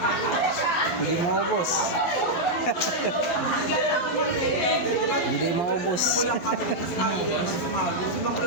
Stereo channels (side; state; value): right; late; 10 ms